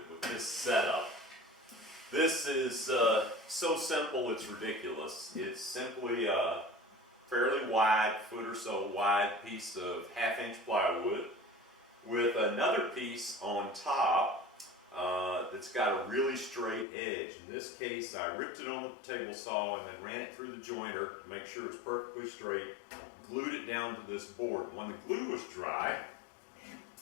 with this setup. This is so simple it's ridiculous. It's simply a fairly wide, foot or so wide piece of 1/2-inch plywood with another piece on top that's got a really straight edge. In this case, I ripped it on the table saw and then ran it through the jointer to make sure it's perfectly straight, glued it down to this board. When the glue was dry,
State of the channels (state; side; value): drops out; right; at 16.9 s